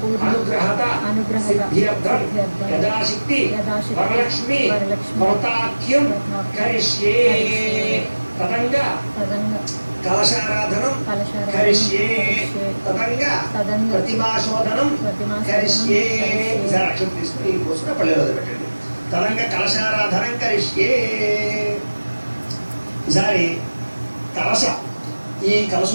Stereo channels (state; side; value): inverted; both; correlation -1.00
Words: అనుగ్రహత సిద్ధ్యర్థం యథాశక్తి వరలక్ష్మి వ్రతాఖ్యం కరిష్యే. తదంగా కలశారాధనం కరిష్యే. తదంగా ప్రతిమాశోధనం కరిష్యే. ఈసారి అక్షరం తీసుకుని పోసుకుని పల్లెలో పెట్టండి. తదంగా కలశారాధనం కరిష్యే. ఈసారి కలశ, ఈ కలశ